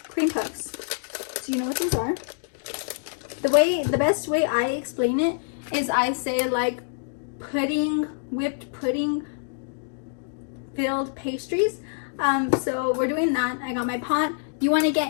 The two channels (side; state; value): right; silent; digital silence